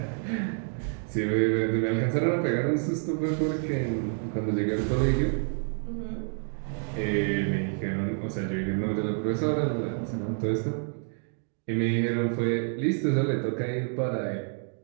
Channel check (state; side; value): silent; left; 59 dB below the other